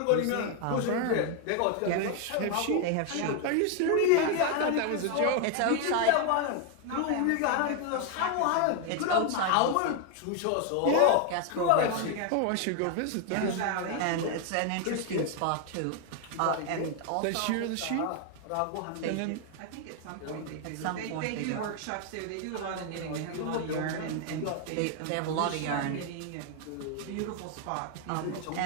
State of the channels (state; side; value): different; both; correlation 0.01